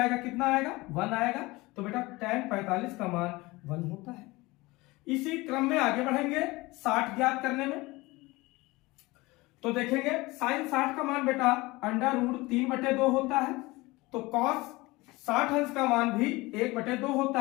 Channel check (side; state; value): right; quieter; 21.8 dB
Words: कितना आएगा 1 आएगा। तो बेटा tan 45 का मान 1 होता है। इसी क्रम में आगे बढ़ेंगे 60 ज्ञात करने में। तो देखेंगे साइन 60 का मान बेटा √3/2 होता है तो कॉस 60 अंश का मान भी 1/2